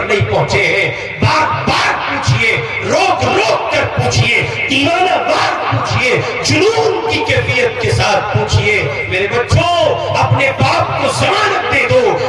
نہیں پہنچے ہیں۔ بار بار پوچھئے، روک روک کر پوچھئے، دیوانہ وار پوچھئے، جنون کی کیفیت کے ساتھ پوچھئے۔ میرے بچوں، اپنے باپ کو ضمانت دے دو،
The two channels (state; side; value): identical; both; correlation 1.00